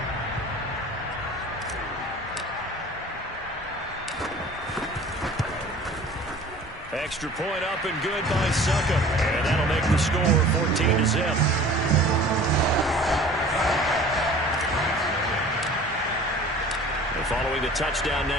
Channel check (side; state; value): both; normal; correlation 0.45